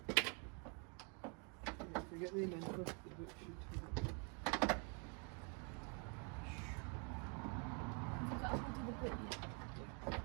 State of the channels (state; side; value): quieter; left; 36.7 dB